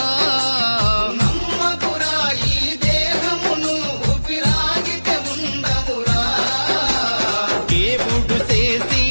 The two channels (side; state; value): both; inverted; correlation -1.00